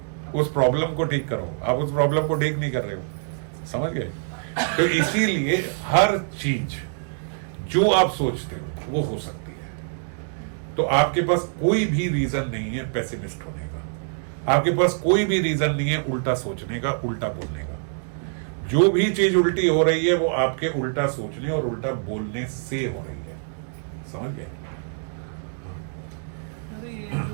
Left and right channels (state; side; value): silent; left; digital silence